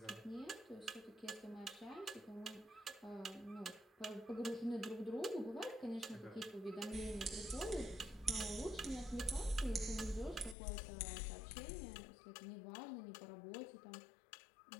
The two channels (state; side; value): drops out; right; at 10.6 s